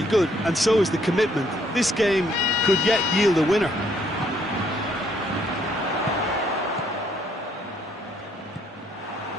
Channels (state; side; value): normal; both; correlation 0.68